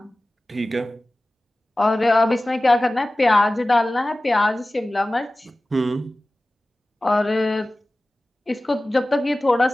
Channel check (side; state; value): both; normal; correlation 0.97